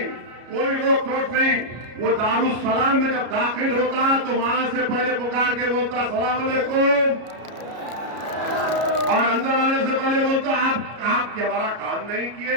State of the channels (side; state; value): left; late; 33 ms